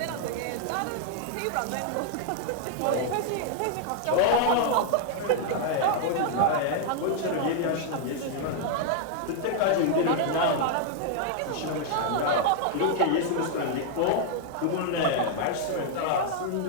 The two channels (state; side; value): different; both; correlation 0.00